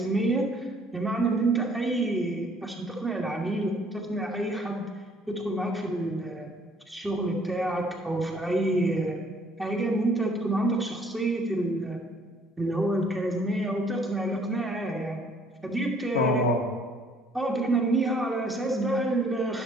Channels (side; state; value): both; normal; correlation 0.61